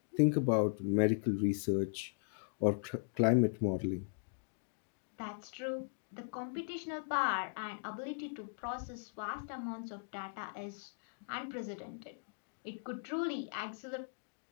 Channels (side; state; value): right; silent; digital silence